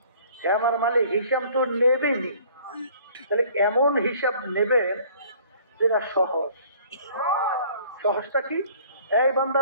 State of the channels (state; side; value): inverted; both; correlation -0.54